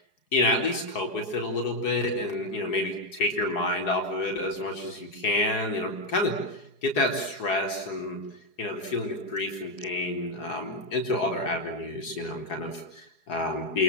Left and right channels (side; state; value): right; late; 4.8 ms